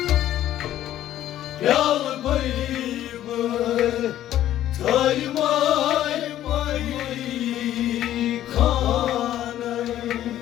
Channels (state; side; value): quieter; right; 12.5 dB